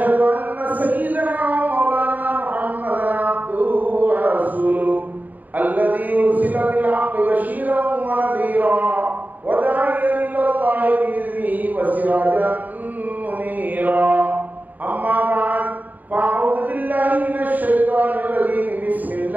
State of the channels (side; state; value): left; late; 0.082 ms